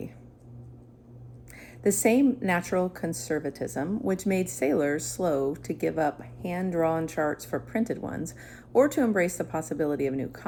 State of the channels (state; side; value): identical; both; correlation 1.00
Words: The same natural conservatism which made sailors slow to give up hand-drawn charts for printed ones or to embrace the possibility of new